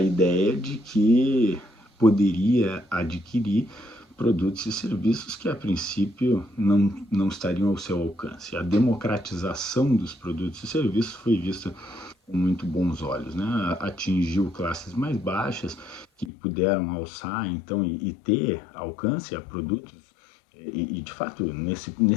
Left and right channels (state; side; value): drops out; right; at 16.3 s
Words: de que poderia adquirir produtos e serviços que a princípio não estariam ao seu alcance. A democratização dos produtos e serviços foi vista com muito bons olhos, né? Atingiu classes mais baixas que puderam alçar então e ter alcance a produtos de fato